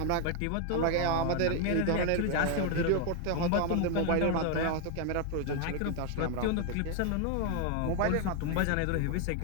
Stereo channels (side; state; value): both; different; correlation 0.01